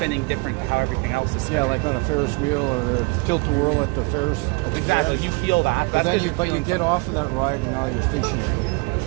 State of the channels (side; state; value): left; quieter; 28.8 dB